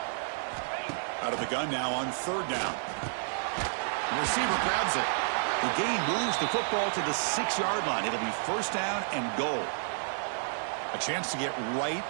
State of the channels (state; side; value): silent; left; digital silence